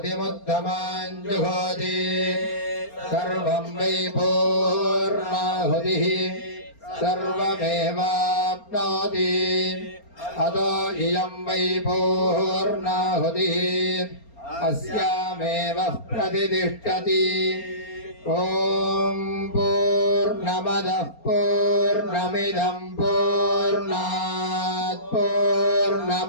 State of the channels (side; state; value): right; late; 4.3 ms